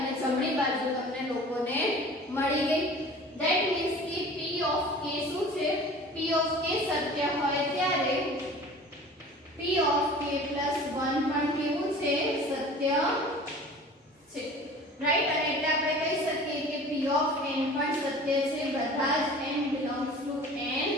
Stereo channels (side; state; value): both; normal; correlation 0.43